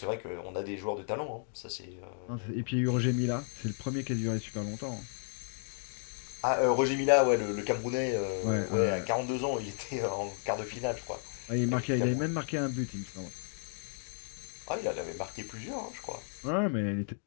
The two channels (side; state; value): right; silent; digital silence